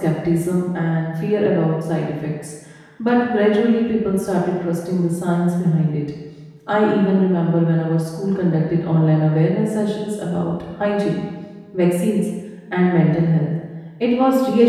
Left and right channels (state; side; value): identical; both; correlation 1.00